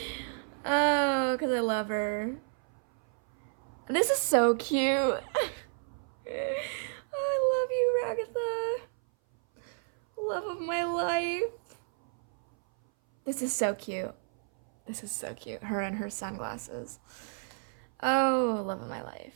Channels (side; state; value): left; silent; 57 dB below the other